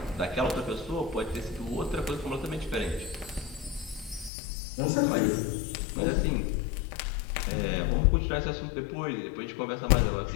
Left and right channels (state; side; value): drops out; right; at 4.3 s